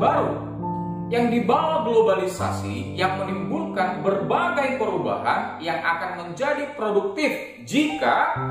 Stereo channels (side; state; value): both; identical; correlation 1.00